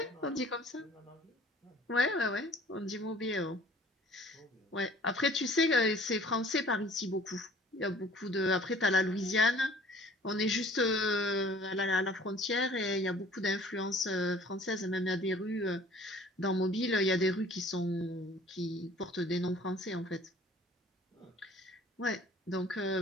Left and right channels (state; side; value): normal; both; correlation 0.51